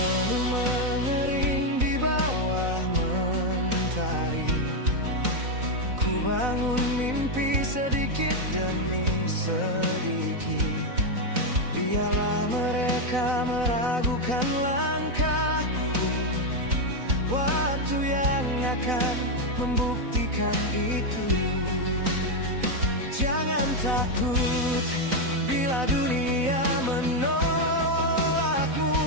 mengering di bawah mentari, ku bangun mimpi sedikit demi sedikit. Biarlah mereka meragukan langkahku, waktu yang akan membuktikan itu. Jangan takut bila dunia menolakmu.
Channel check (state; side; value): late; left; 4.0 ms